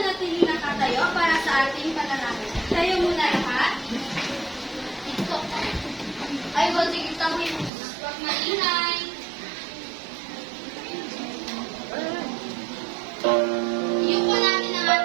na tatayo para sa ating panalangin. Tayo muna lahat. Ay, wag sige tayo. Huwag maingay. Iyuko natin ang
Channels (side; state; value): left; drops out; at 7.7 s